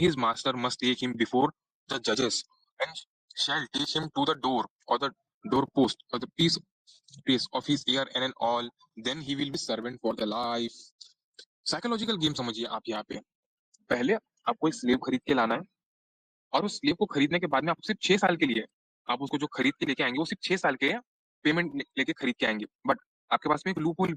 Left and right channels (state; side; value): identical; both; correlation 1.00